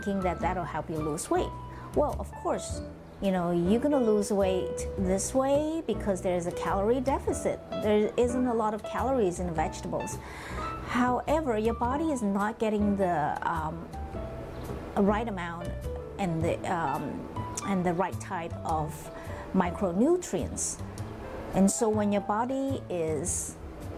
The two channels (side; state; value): both; identical; correlation 1.00